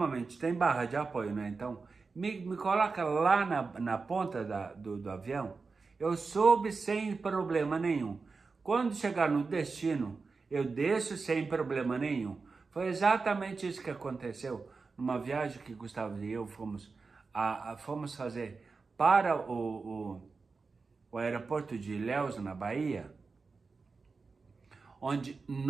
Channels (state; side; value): quieter; left; 4.4 dB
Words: tem barra de apoio, né? Então, me coloca lá na ponta do avião, eu subo sem problema nenhum. Quando chegar no destino, eu desço sem problema nenhum. Foi exatamente isso que aconteceu numa viagem que Gustavo e eu fomos fazer para o aeroporto de Ilhéus, na Bahia, onde,